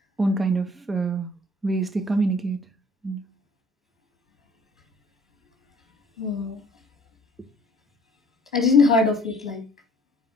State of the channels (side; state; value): both; normal; correlation 0.56